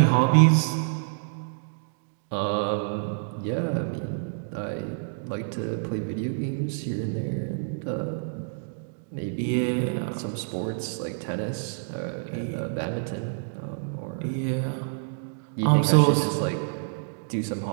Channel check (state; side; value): silent; left; digital silence